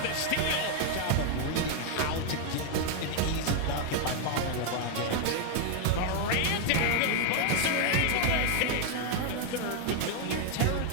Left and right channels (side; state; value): both; different; correlation 0.00